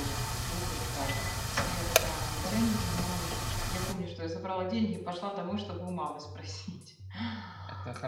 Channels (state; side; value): identical; both; correlation 1.00